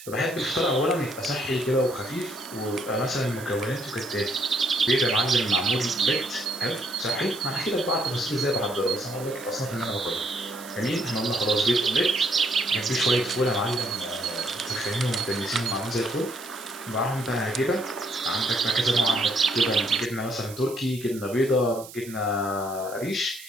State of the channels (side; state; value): right; noise; hiss, 16 dB below the sound